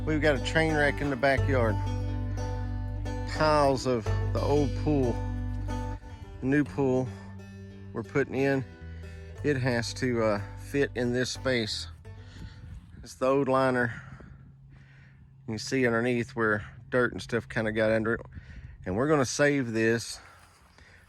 we've got a train wreck in the backyard. Tiles of the old pool, the new pool we're putting in, it has to fit in this space. It's the old liner. You can see underneath where dirt and stuff kind of got under it. And we're gonna save this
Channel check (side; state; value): both; identical; correlation 1.00